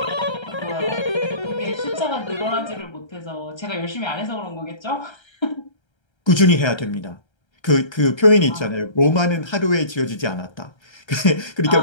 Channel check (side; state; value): right; late; 1.3 ms